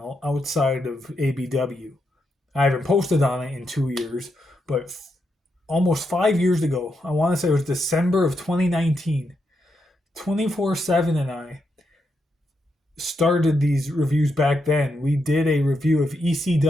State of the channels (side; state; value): both; normal; correlation 0.82